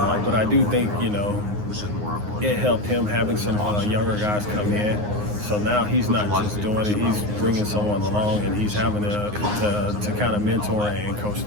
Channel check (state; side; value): late; left; 9.6 ms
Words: But I do think, it helped him having some younger guys come in. So now he's not just doing it, he's bringing someone along, and he's having to kind of mentor and coach